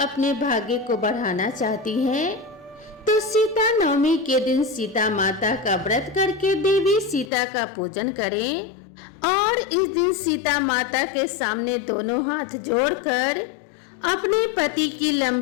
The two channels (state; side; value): drops out; right; at 7.3 s